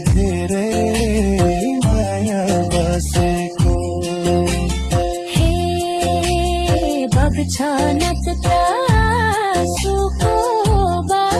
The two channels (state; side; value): identical; both; correlation 1.00